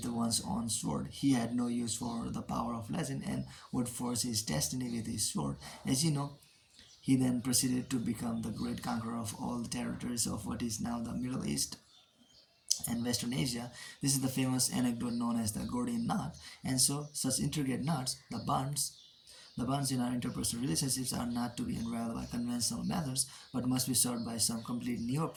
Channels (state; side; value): identical; both; correlation 1.00